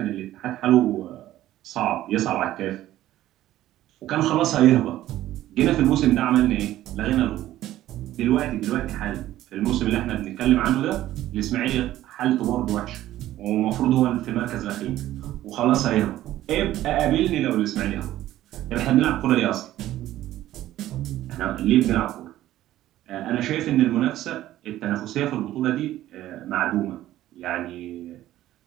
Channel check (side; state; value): left; quieter; 14.0 dB